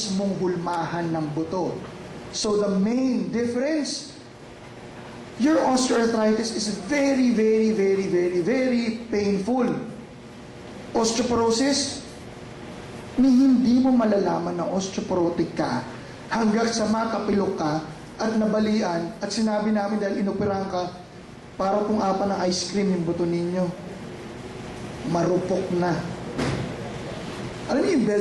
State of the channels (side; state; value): both; identical; correlation 1.00